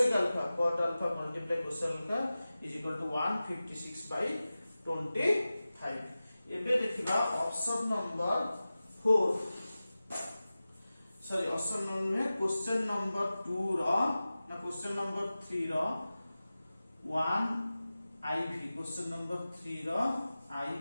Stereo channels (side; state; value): both; inverted; correlation -0.96